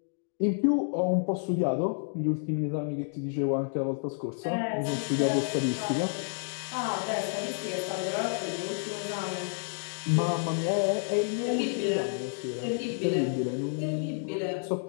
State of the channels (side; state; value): right; silent; digital silence